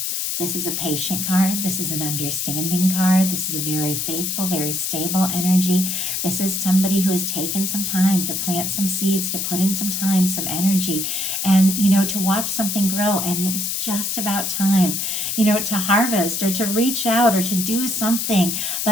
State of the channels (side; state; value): left; noise; hiss, 1 dB below the sound